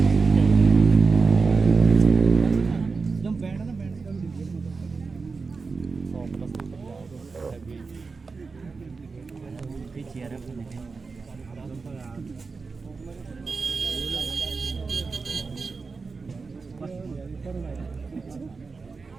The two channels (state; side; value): quieter; left; 4.5 dB